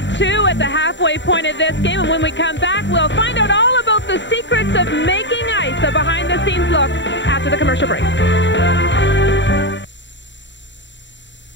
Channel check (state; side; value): late; right; 0.53 ms